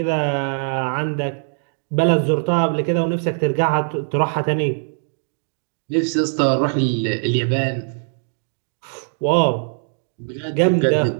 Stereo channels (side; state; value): left; silent; digital silence